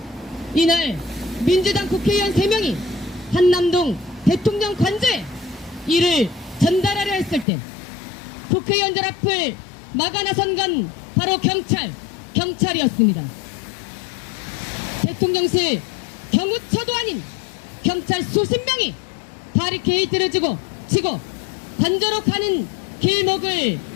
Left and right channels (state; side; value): drops out; right; at 7.5 s